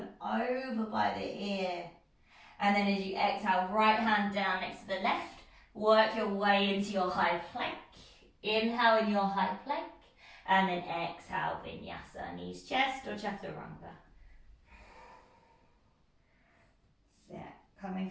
over by the ear. And then as you exhale, right hand down next to the left, work your way into your high plank. Inhale in your high plank, and then exhale, vinyasa, knees chest or chaturanga. So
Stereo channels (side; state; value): both; identical; correlation 1.00